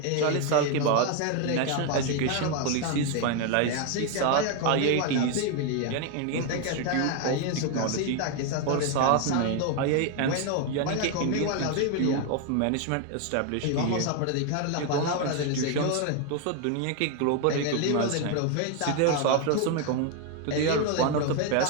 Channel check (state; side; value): different; both; correlation 0.01